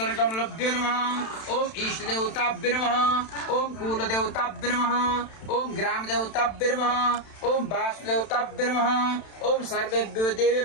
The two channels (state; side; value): late; right; 31 ms